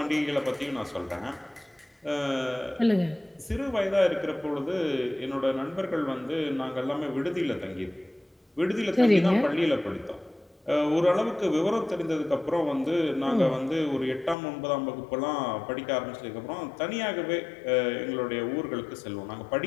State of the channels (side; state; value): right; drops out; at 14.4 s